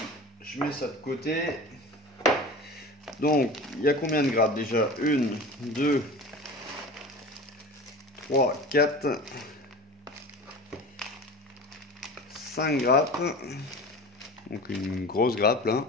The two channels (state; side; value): normal; both; correlation 0.35